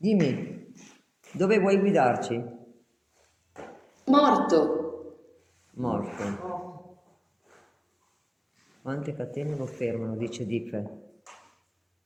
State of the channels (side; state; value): both; identical; correlation 1.00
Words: dove vuoi guidarci? Morto. Morto. Quante catene lo fermano, dice Dife.